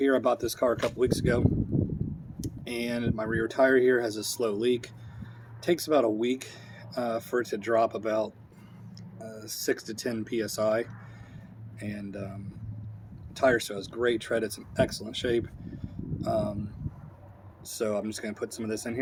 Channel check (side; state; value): both; identical; correlation 1.00